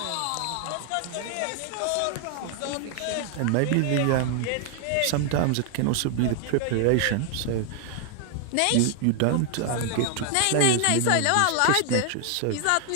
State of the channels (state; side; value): different; both; correlation 0.00